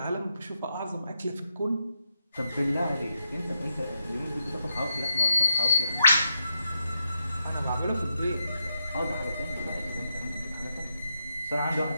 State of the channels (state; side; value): inverted; both; correlation -0.83